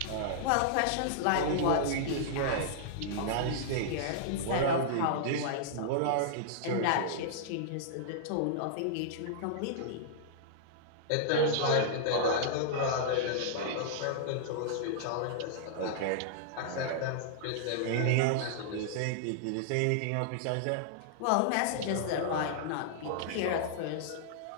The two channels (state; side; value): different; both; correlation -0.01